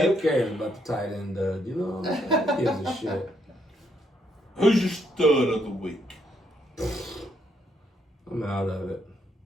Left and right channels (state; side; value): normal; both; correlation 0.74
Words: who cares about the tight end dud? You know what I'm saying? Who gives a shit? Who's your stud of the week? I'm out of it.